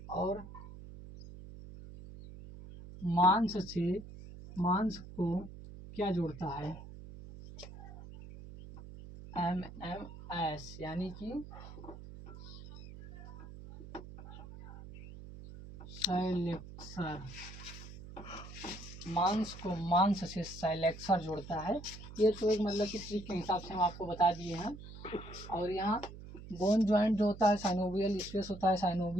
और मांस को क्या जोड़ता है, एमएमएस, यानी कि साइलेक्सर। मांस को मांस से साइलेक्सर जोड़ता है। ये तो एक मतलब कि ट्रिक के हिसाब से हम आपको बता दिए हैं। और यहाँ बोन ज्वाइंट जो होता है, साइनोवियल स्पेस होता है,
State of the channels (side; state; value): right; noise; hum, 14 dB below the sound